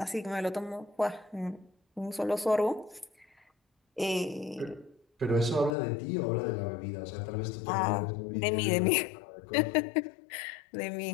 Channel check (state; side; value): drops out; right; at 5.8 s